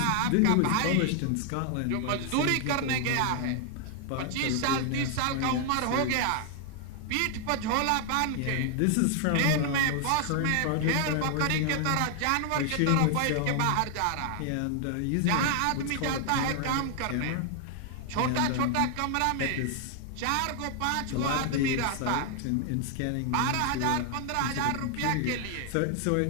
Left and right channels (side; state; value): both; different; correlation 0.00